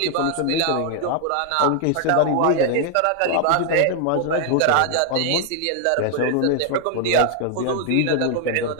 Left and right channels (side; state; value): both; different; correlation 0.00